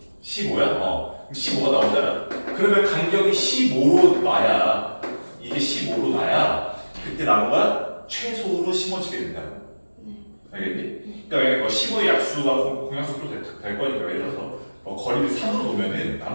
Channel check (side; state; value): both; inverted; correlation -1.00